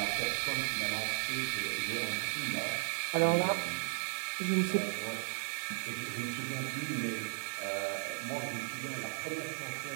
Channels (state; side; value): silent; left; 54 dB below the other